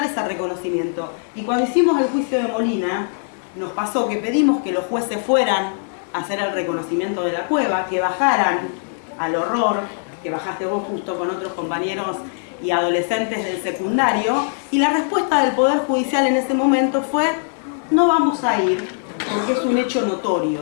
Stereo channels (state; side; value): silent; right; digital silence